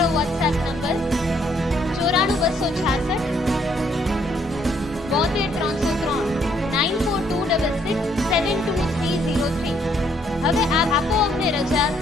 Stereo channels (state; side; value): normal; both; correlation 0.68